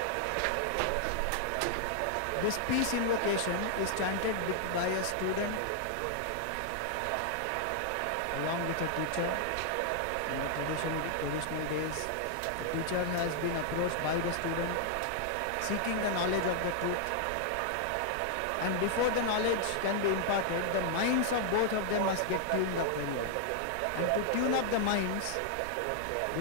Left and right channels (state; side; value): different; both; correlation 0.00